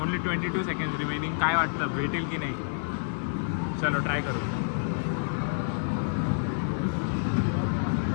Only 22 second remaining. काय वाटतं भेटेल की नाही? चलो ट्राय करू.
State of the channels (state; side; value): silent; right; digital silence